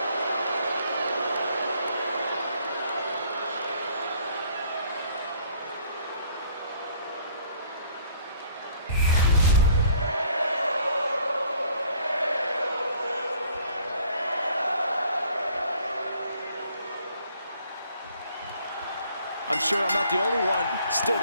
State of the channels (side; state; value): both; inverted; correlation -0.58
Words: I'm sure I'm not the only one still